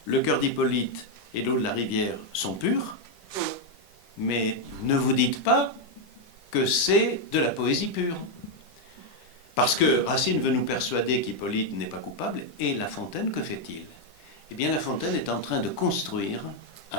le cœur d'Hippolyte et l'eau de la rivière sont purs, mais ne vous dites pas que c'est de la poésie pure. Parce que Racine veut nous persuader qu'Hippolyte n'est pas coupable, et La Fontaine, que fait-il? Eh bien, La Fontaine est en train de construire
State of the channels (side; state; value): right; late; 10 ms